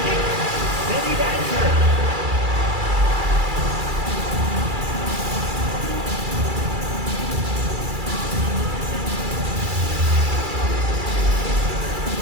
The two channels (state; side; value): late; left; 2.3 ms